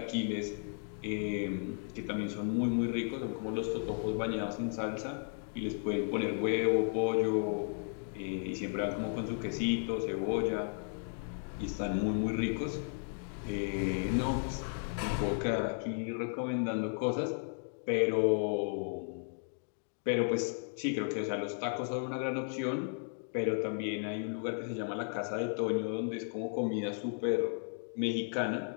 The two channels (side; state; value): right; silent; 55 dB below the other